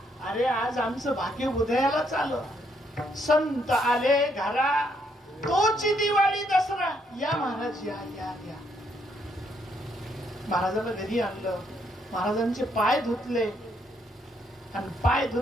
अरे आज आमचं भाग्य उदयालाच आलं. संत आले घरा, तोची दिवाळी दसरा. या महाराज या या या. महाराजांना घरी आणलं. महाराजांचे पाय धुतले आणि पाय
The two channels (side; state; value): both; normal; correlation 0.73